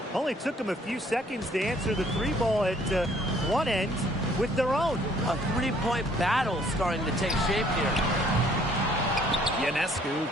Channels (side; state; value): both; normal; correlation 0.61